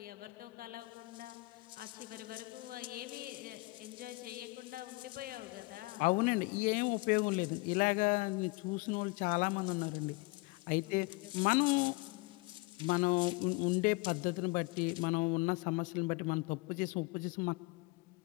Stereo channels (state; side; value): quieter; right; 25.3 dB